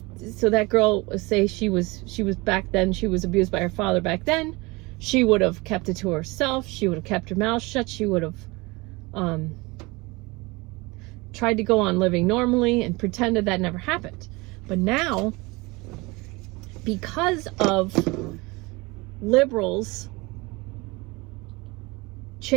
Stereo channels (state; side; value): quieter; left; 24.2 dB